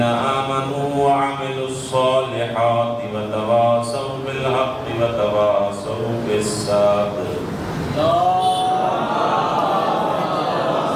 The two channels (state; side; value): identical; both; correlation 1.00